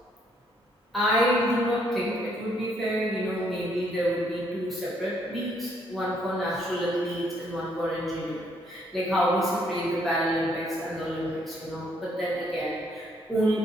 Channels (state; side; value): normal; both; correlation 0.69